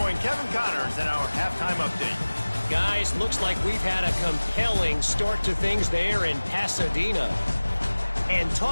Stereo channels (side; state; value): both; inverted; correlation -1.00